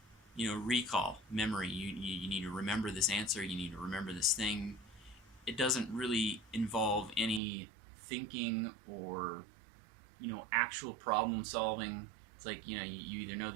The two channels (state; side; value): drops out; left; at 7.4 s